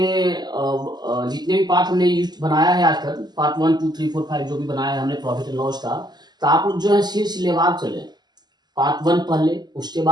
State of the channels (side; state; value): left; late; 0.20 ms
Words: जितने भी पार्ट हमने यूज बनाया है आज तक, पार्ट 1 2 3 4 5 जो भी बनाया है हमने प्रॉफिट एंड लॉस का, तो आप लोग जो है सिलसिलेवार चले। पार्ट 1 पढ़ ले, उसके